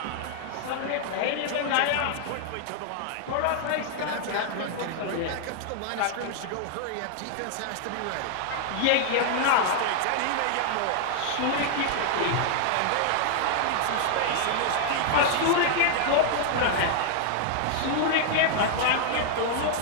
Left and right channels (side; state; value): both; different; correlation 0.00